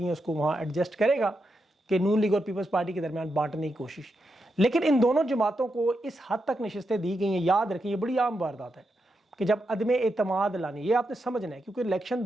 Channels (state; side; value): normal; both; correlation 0.85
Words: ہیں اس کو وہاں ایڈجسٹ کرے گا کہ نون لیگ اور پیپلز پارٹی کے درمیان بانٹنے کی کوشش. لیکن ان دونوں جماعتوں کو اس حد تک نشستیں دی گئی ہیں, یاد رکھیں یہ بڑی عام واردات ہے کہ جب عدم اعتماد لانی, یہ آپ نے سمجھنا ہے کیونکہ الیکشن